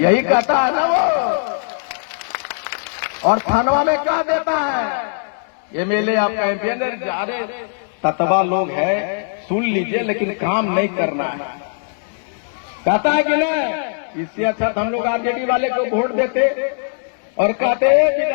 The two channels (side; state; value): right; silent; 66 dB below the other